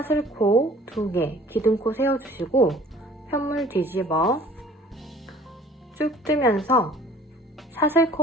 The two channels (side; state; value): both; normal; correlation 0.50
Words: 2개, 기둥코 세워주시고 편물 뒤집어 쭉 뜨면서